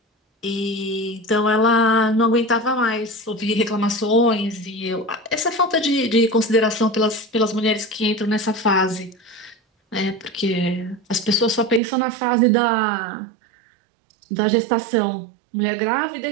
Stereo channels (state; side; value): drops out; left; at 11.8 s